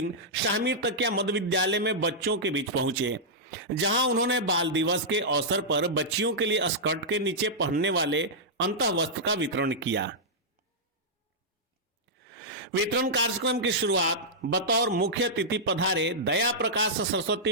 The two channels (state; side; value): normal; both; correlation -0.10